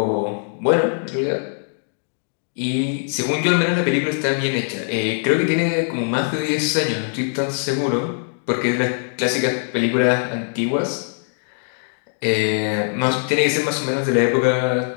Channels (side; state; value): right; silent; digital silence